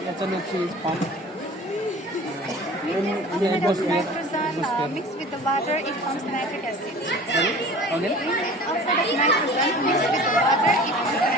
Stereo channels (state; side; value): normal; both; correlation 0.43